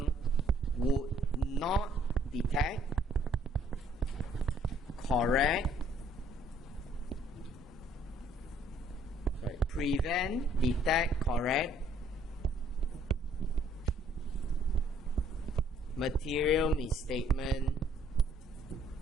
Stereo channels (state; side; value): normal; both; correlation 0.63